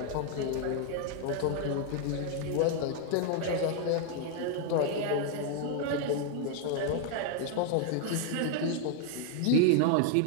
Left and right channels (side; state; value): both; different; correlation 0.00